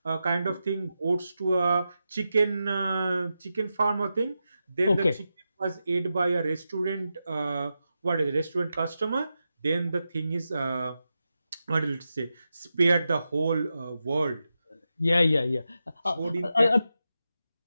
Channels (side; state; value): both; inverted; correlation -0.89